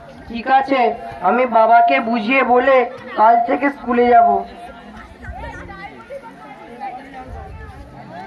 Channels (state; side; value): identical; both; correlation 1.00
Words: ঠিক আছে, আমি বাবাকে বুঝিয়ে বলে কাল থেকে স্কুলে যাব।